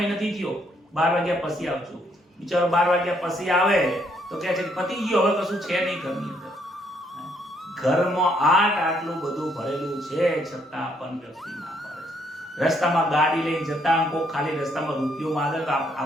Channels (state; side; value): normal; both; correlation 0.71